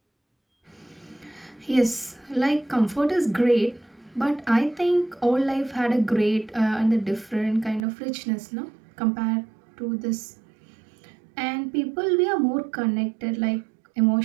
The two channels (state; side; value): drops out; left; at 7.8 s